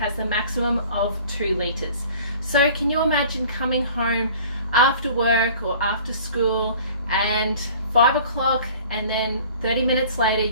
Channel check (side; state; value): both; inverted; correlation -0.47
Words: the maximum of 2 litres. So can you imagine coming home after work or after school and 5 o'clock, and then 30 minutes later